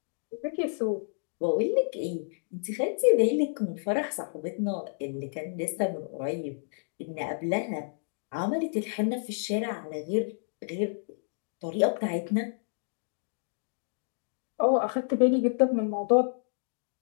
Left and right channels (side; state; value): right; silent; digital silence